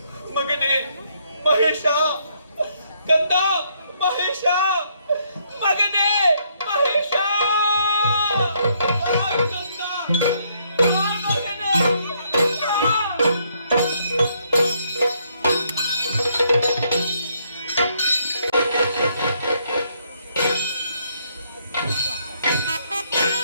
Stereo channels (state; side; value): inverted; both; correlation -0.71